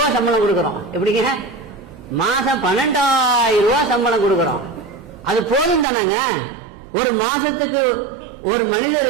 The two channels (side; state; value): left; drops out; at 5.9 s